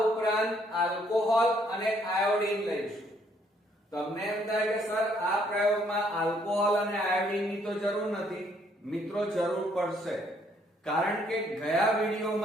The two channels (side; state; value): both; normal; correlation 0.67